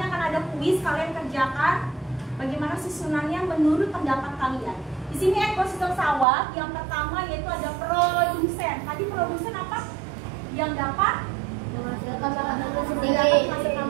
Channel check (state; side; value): drops out; left; at 6.2 s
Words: akan ada kuis, kalian kerjakan bagaimana susunannya menurut pendapat kalian. Di sini ekosistem sawah yang pertama yaitu ada produsen. Tadi produsen apa? Yang dapat Menghasilkan makanan menghasilkan